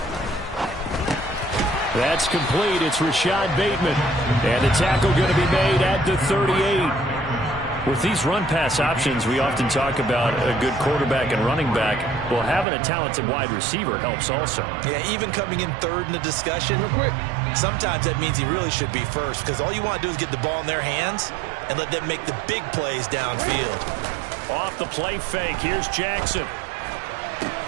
That's complete. It's Rashad Bateman. And the tackle going to be made at the 38. With these run-pass options, we often talk about a good quarterback and running back. Well, having a talented wide receiver helps also. Yeah, even coming in 3rd in the discussion, sometimes that means he really should be first because all you want to do is get the ball in their hands and let them make the big plays downfield. Off the play fake. Here's Jackson.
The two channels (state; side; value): drops out; left; at 12.7 s